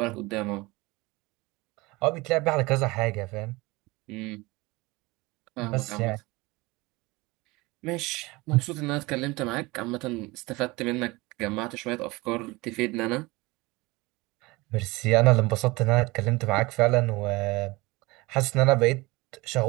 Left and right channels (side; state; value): left; quieter; 22.7 dB